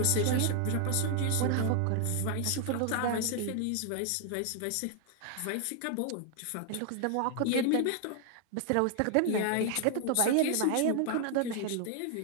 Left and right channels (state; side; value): different; both; correlation 0.00